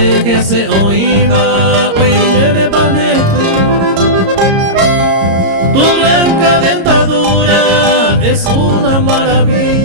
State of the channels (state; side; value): late; left; 26 ms